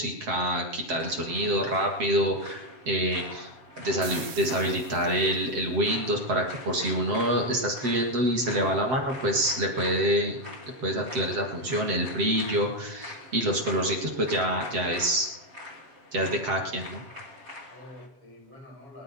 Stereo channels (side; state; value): left; late; 7.7 ms